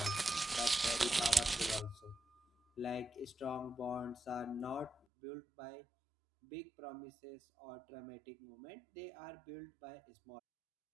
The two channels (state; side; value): drops out; left; at 5.0 s